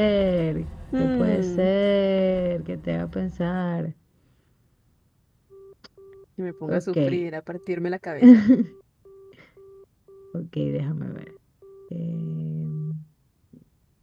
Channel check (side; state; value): both; identical; correlation 1.00